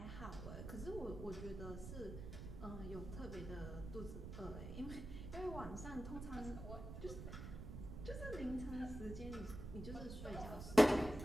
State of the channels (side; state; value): right; noise; rumble, 8 dB below the sound